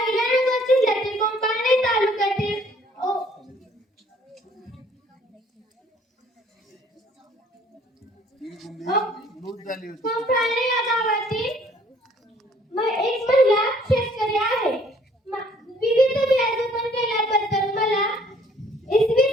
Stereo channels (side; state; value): both; normal; correlation 0.59